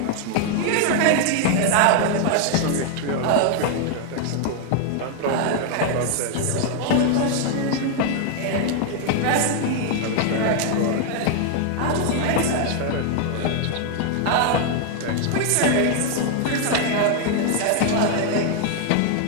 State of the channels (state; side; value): different; both; correlation 0.00